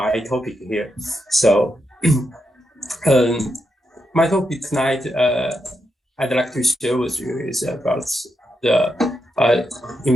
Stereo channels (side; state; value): both; normal; correlation 0.84